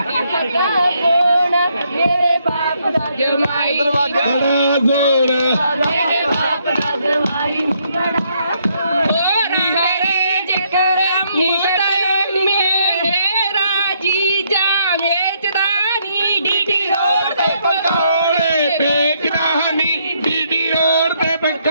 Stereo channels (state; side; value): inverted; both; correlation -0.73